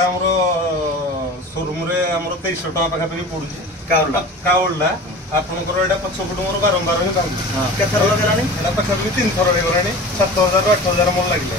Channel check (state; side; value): normal; both; correlation 0.37